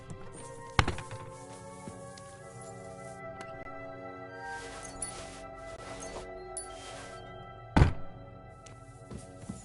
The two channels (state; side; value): identical; both; correlation 1.00